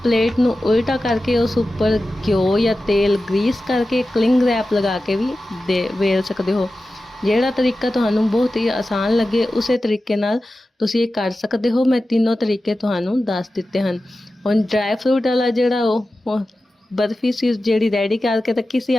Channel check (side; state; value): both; normal; correlation 0.94